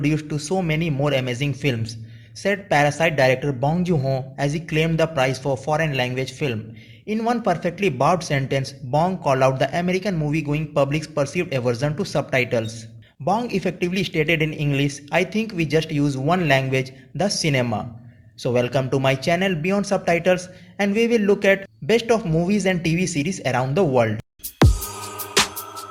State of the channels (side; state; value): both; identical; correlation 1.00